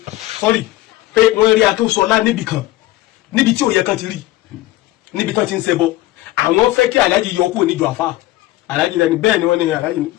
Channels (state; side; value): quieter; right; 16.7 dB